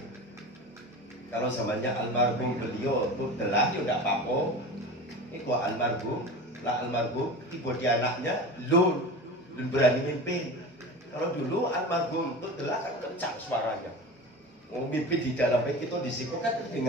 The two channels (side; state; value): both; normal; correlation 0.32